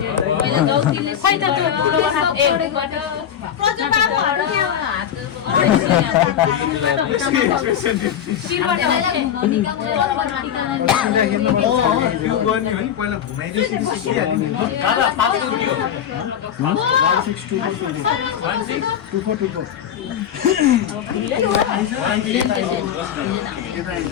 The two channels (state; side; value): quieter; right; 9.3 dB